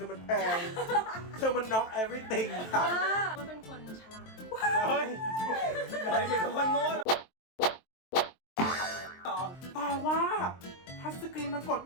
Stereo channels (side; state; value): right; late; 23 ms